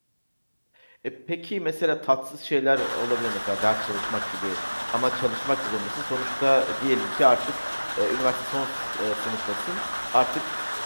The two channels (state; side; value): inverted; both; correlation -1.00